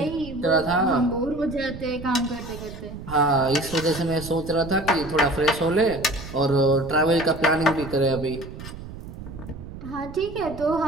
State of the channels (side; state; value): right; noise; rumble, 12 dB below the sound